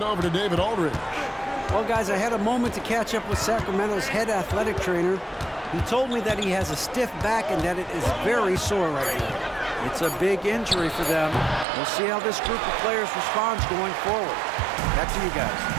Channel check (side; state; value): left; drops out; at 11.7 s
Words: over to David Aldridge. Well, guys, I had a moment to catch up with Sacramento's head athletic trainer. He told me that he has a stiff back and that it is very sore right now. It's a big injury for them. We'll see how this group of players responds going forward. Back to you guys.